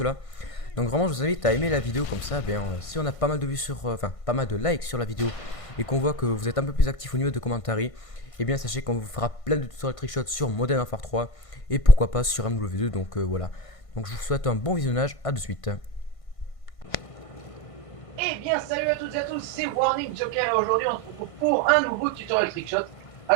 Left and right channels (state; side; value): late; right; 1.5 ms